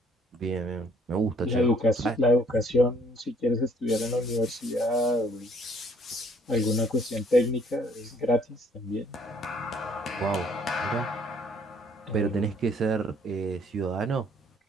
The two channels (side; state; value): both; normal; correlation 0.62